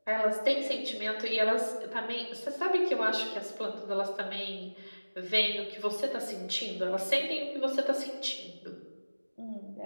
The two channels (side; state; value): both; inverted; correlation -1.00